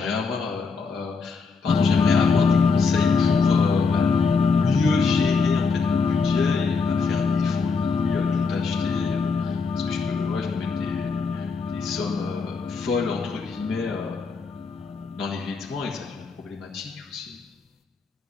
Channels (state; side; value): quieter; right; 4.9 dB